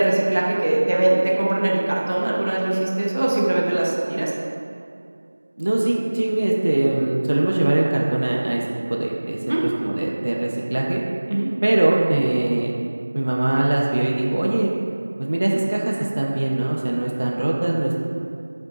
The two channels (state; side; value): inverted; both; correlation -1.00